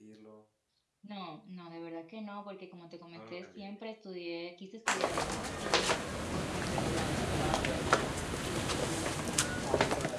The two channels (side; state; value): both; identical; correlation 1.00